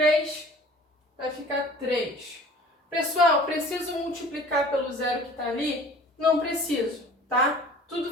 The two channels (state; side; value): normal; both; correlation 0.47